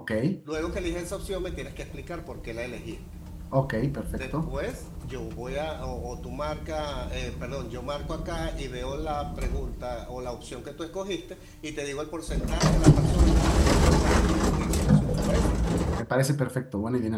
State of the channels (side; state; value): both; identical; correlation 1.00